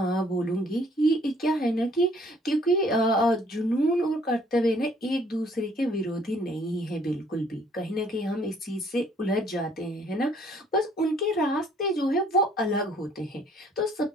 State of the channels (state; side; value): normal; both; correlation 0.61